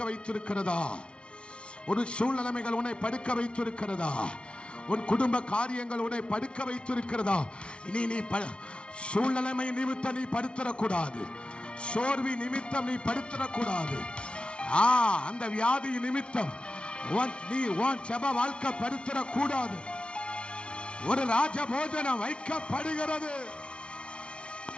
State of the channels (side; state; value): right; late; 0.058 ms